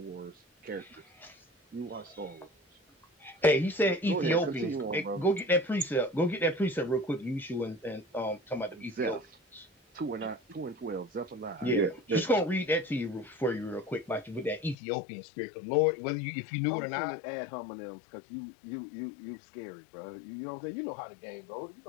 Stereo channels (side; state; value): right; drops out; at 14.8 s